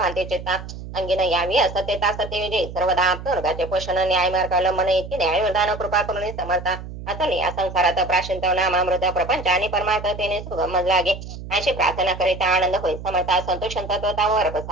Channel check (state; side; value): noise; right; hum, 11 dB below the sound